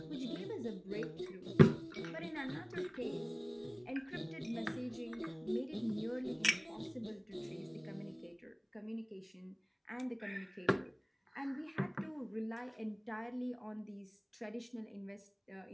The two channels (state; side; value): identical; both; correlation 1.00